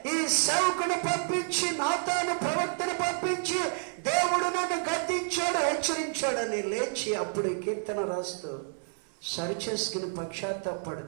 ఈ సేవకుని పంపించి, నాతాను ప్రవక్తను పంపించి దేవుడు నన్ను గద్దించాడు, హెచ్చరించాడని లేచి అప్పుడు కీర్తన రాస్తూ, సరిచేసుకుని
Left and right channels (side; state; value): left; silent; 58 dB below the other